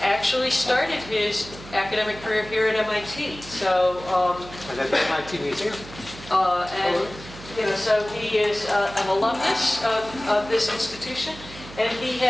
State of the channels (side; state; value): right; noise; hum, 16 dB below the sound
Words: actually started his academic career here at MIT. So, and at the MIT Museum. And you know, so he is an alumnus of this institution, and he